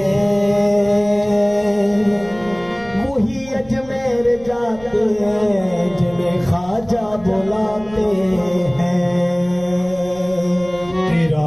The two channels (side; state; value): right; noise; rumble, 21 dB below the sound